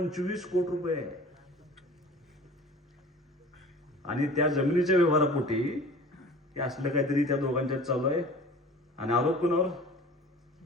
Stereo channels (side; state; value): both; normal; correlation 0.43